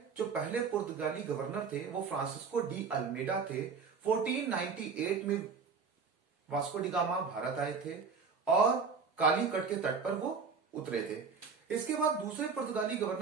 जो पहले पुर्तगाली गवर्नर थे वो फ्रांसिस्को डी अल्मेडा थे। 1498 में वास्को डिगामा भारत आए थे और काली कट के तट पर वो उतरे थे। इसके बाद दूसरे पुर्तगाली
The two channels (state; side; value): quieter; left; 5.4 dB